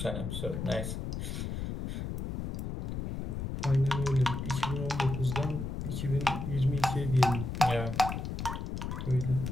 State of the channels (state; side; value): noise; left; rumble, 4 dB below the sound